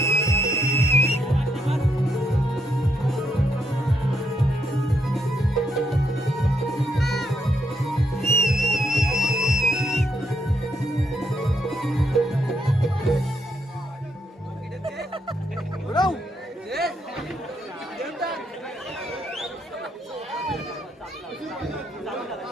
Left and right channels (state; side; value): normal; both; correlation 0.77